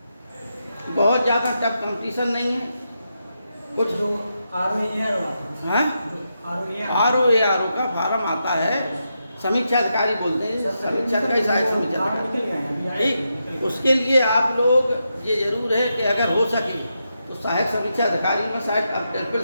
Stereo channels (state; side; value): inverted; both; correlation -0.85